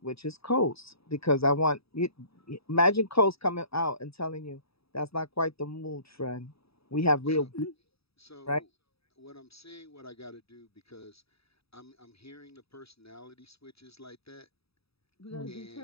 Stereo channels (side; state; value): right; late; 0.77 ms